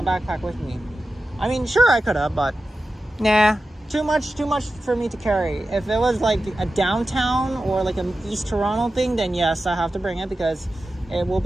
backpack with me. I mean, sure, I could have, but nah, too much for me to carry. If it was like a downtown or like an East Toronto thing, then yes, I have to bring it, because it will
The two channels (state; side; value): normal; both; correlation 0.93